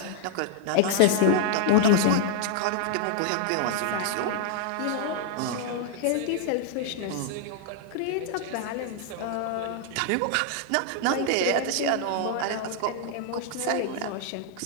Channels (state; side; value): different; both; correlation 0.00